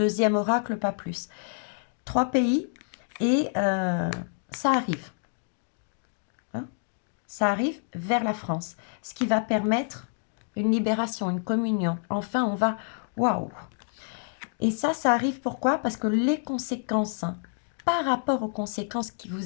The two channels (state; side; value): silent; right; 59 dB below the other